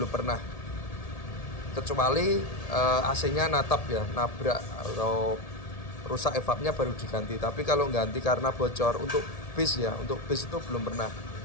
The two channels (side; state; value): right; late; 1.8 ms